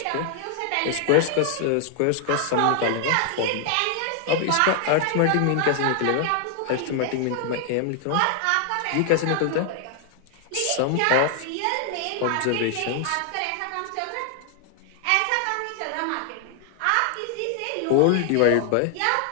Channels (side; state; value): both; different; correlation 0.00